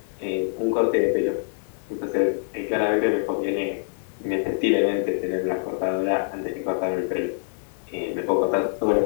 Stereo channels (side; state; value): right; silent; digital silence